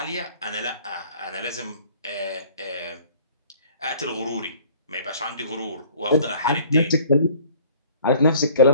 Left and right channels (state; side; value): inverted; both; correlation -0.52